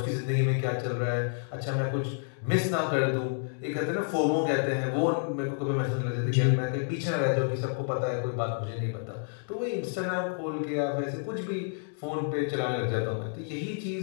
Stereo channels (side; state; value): right; silent; digital silence